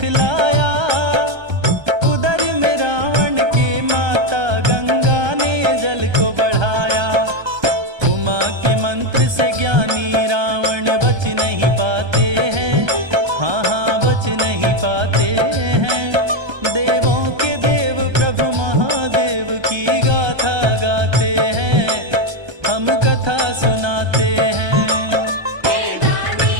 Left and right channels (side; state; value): left; late; 1.3 ms